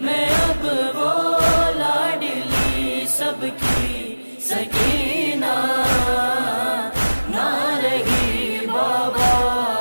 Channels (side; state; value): both; inverted; correlation -1.00